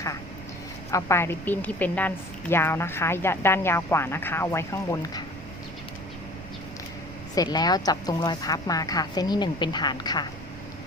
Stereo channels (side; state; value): right; noise; rumble, 14 dB below the sound